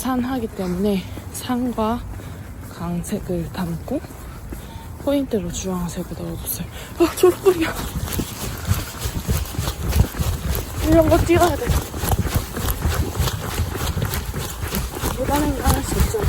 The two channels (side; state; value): both; identical; correlation 1.00